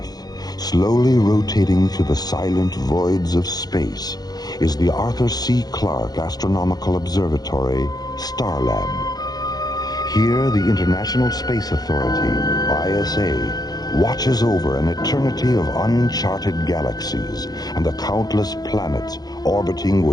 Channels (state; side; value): late; right; 0.19 ms